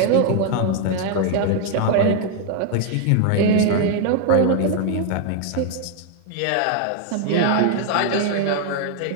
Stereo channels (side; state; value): both; different; correlation 0.00